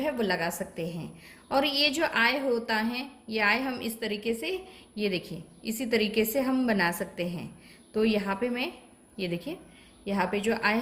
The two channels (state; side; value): identical; both; correlation 1.00